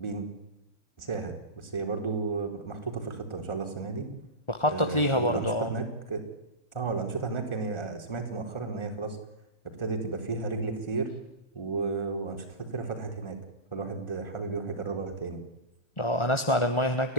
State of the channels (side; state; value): right; late; 1.4 ms